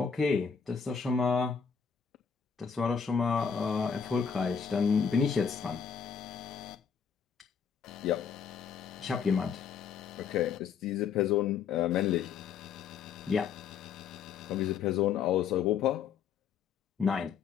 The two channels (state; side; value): quieter; right; 6.8 dB